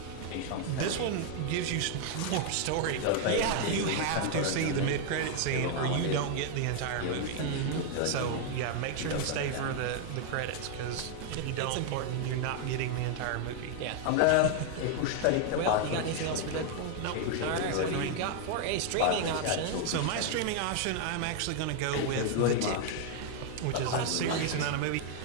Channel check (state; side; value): different; both; correlation 0.00